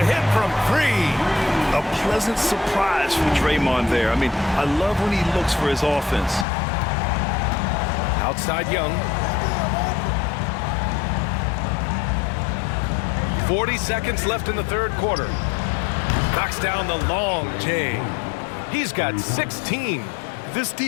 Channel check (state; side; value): drops out; right; at 6.5 s